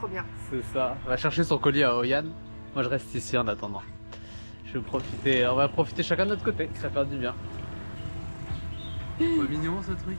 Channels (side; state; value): both; inverted; correlation -1.00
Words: bien. C'est ça. Elle va chercher son colis à Hoi An. Moi, je reste ici en attendant. Je vais profiter. On va profiter chacun de notre côté. Ça fait du bien. Pas mignon ce truc.